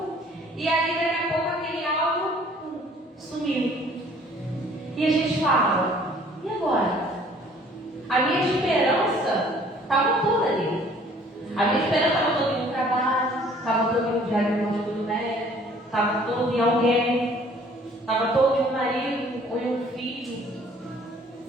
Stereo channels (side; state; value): both; normal; correlation 0.56